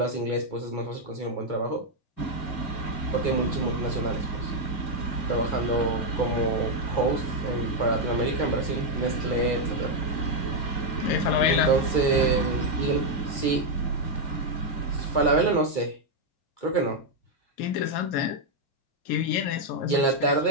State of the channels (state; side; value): late; right; 2.3 ms